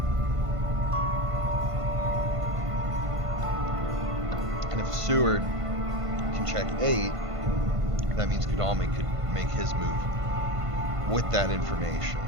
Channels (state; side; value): late; left; 1.5 ms